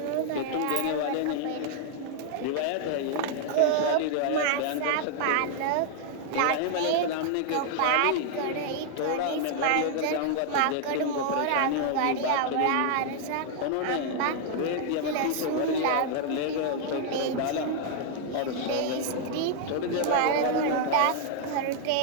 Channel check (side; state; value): both; different; correlation 0.00